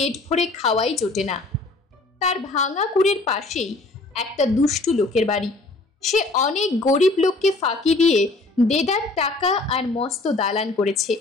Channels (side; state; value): right; quieter; 3.2 dB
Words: ভরে খাওয়াই জোটে না। তার ভাঙা কুড়ের পাশেই একটা দুষ্টু লোকের বাড়ি। সে অনেক গরিব লোককে ফাঁকি দিয়ে দেদার টাকা আর মস্ত দালান করেছে।